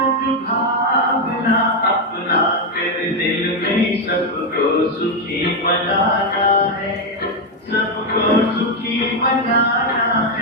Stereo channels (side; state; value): both; normal; correlation 0.04